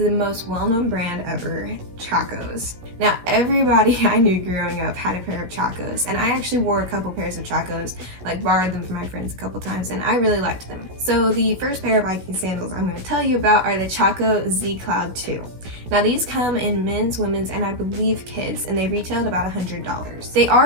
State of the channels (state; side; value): late; left; 16 ms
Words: most well-known brand ever, Chaco Z. Now, everybody I knew growing up had a pair of Chaco Z, and I actually wore a couple pairs of Chaco Z, borrowed them from my friends a couple times, and I really liked them. So the first pair of hiking sandals I'm going to tell you about are the Chaco Z Cloud 2. Now these come in men's, women's, and I believe kids, and they retailed about $100. They